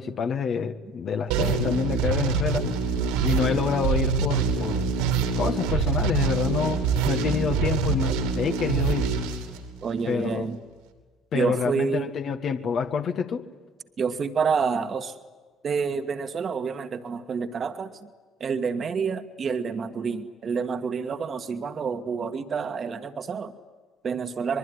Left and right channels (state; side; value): normal; both; correlation 0.49